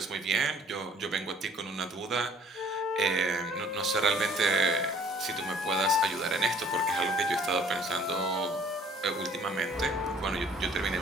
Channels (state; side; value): normal; both; correlation 0.56